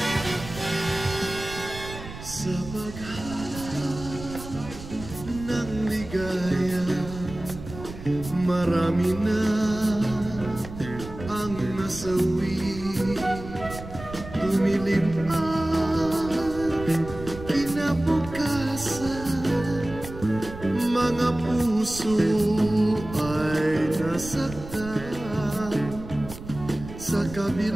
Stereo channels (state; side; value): noise; right; rumble, 12 dB below the sound